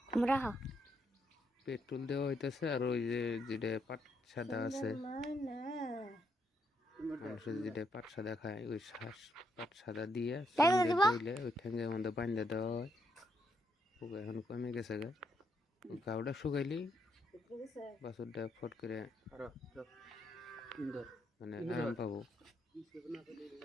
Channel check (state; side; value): normal; both; correlation 0.77